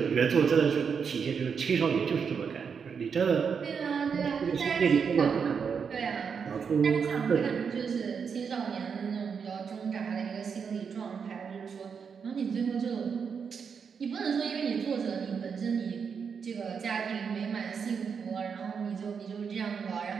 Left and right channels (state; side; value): quieter; left; 6.3 dB